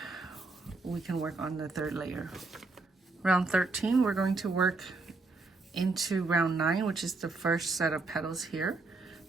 we can work on the third layer. Round 13, we're going to work into round 9, which is the first set of petals here.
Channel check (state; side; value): quieter; left; 3.6 dB